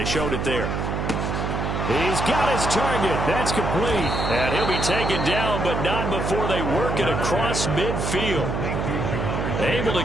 showed it there. He's got his target. That's complete. And he'll be taken down, but not before they work it across midfield. Able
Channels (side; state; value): right; noise; hum, 2 dB below the sound